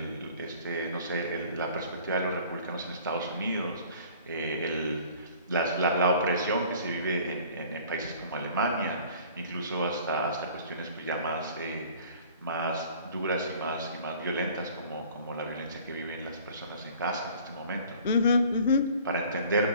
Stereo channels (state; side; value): inverted; both; correlation -0.50